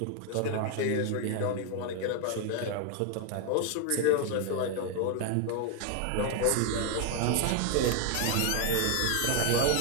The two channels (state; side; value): different; both; correlation 0.01